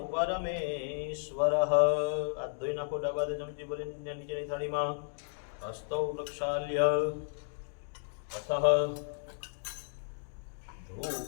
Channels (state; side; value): silent; right; digital silence